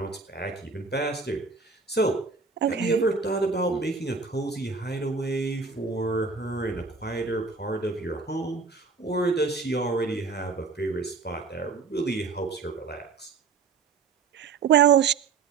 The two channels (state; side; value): quieter; left; 4.9 dB